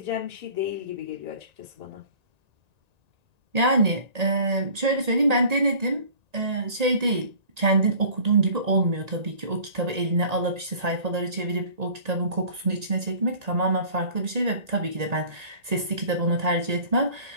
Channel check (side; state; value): left; late; 1.9 ms